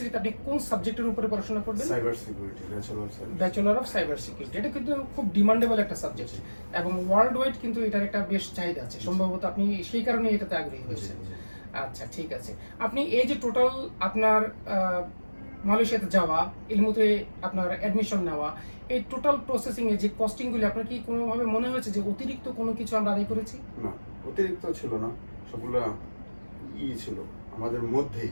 আপনি কোন সাবজেক্টের উপরে পড়াশোনা করবেন? Cyber security, bachelor of cyber security. এটা কিন্তু খুব ডিমান্ডেবল একটা সাবজেক্ট এবং ওয়ার্ল্ড ওয়াইড কিন্তু এটার একটা বেশ চাহিদা আছে। সম্ভবত আপনি সেই কারণে এটাতে আগ্রহী হয়েছেন। আচ্ছা, ঠিক আছে। আপনি এই যে টোটাল আপনার মালয়েশিয়াতে যাওয়া, এলমোতে আপনার অ্যাডমিশন নেওয়া, এই টোটাল প্রসেসিং এ যে কস্টিংগুলি, আপনার কি কোনোভাবে মনে হয়েছে যে অতিরিক্ত কোনো কিছু আমরা আদায় করেছি? না, অতিরিক্ত ছিল না, সবগুলো ছিল আমাদের মধ্যেই,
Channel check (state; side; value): inverted; both; correlation -1.00